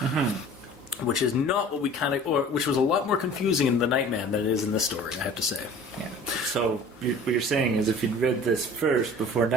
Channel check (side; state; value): both; normal; correlation 0.45